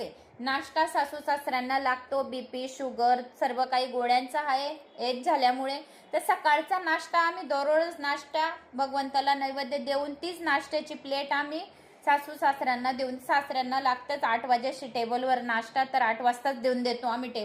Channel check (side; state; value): both; identical; correlation 1.00